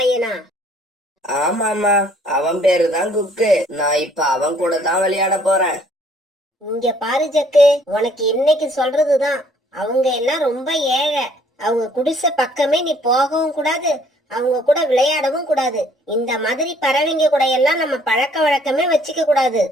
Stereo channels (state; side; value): normal; both; correlation 0.61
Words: ஆமாமா, அவன் பேரு தான் குக்கு. நான் இப்ப அவன் கூட தான் விளையாட போறேன். இங்க பாரு ஜக்கு, உனக்கு இன்னைக்கு சொல்றதுதான். அவங்க எல்லாம் ரொம்ப ஏழை. அவங்க குடிசை பக்கமே நீ போகவும் கூடாது, அவங்க கூட விளையாடவும் கூடாது. இந்த மாதிரி பறவைங்க கூட எல்லாம் நம்ம பழக்க வழக்கமே வச்சுக்க கூடாது.